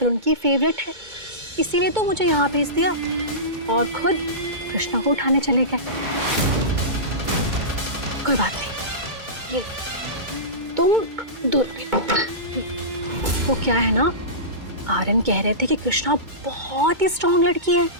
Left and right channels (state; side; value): late; left; 2.2 ms